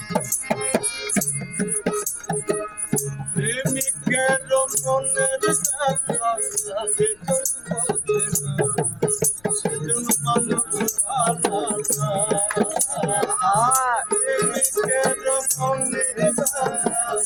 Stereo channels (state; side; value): noise; left; rumble, 28 dB below the sound